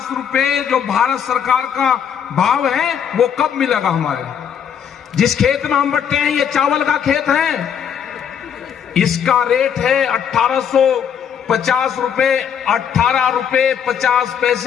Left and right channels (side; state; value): right; quieter; 8.1 dB